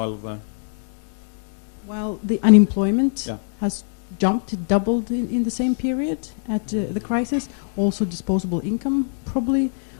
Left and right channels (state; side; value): silent; right; 63 dB below the other